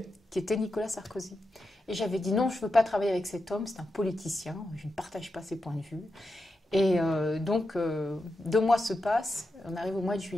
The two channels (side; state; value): both; normal; correlation 0.88